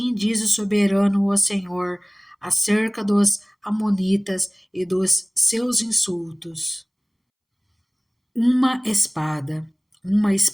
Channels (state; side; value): identical; both; correlation 1.00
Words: diz o soberano o Senhor, acerca dos amonitas e dos seus insultos. Uma espada